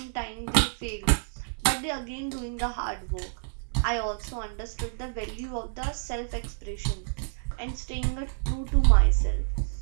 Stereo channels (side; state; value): left; silent; digital silence